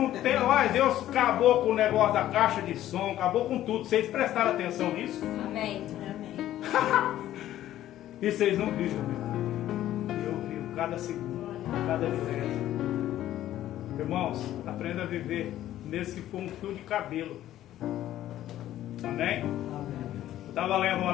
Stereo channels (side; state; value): right; quieter; 13.1 dB